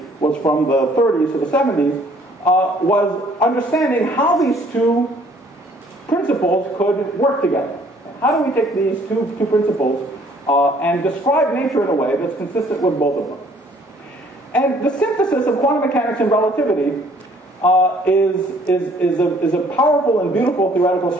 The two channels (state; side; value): normal; both; correlation 0.60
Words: was from the 30s to the 70s, was understanding how these two principles could work together. How do we take these two principles and describe nature in a way that's consistent with both of them? And the synthesis of quantum mechanics and relativity is a powerful and beautiful theoretical